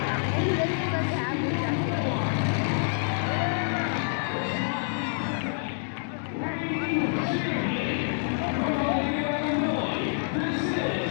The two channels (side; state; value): right; silent; digital silence